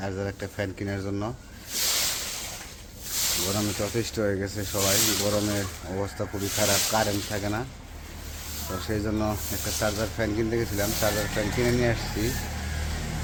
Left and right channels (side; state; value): both; identical; correlation 1.00